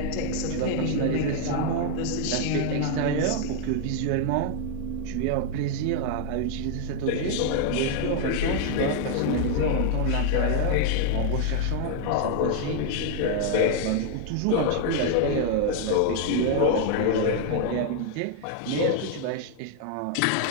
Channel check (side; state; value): both; different; correlation 0.00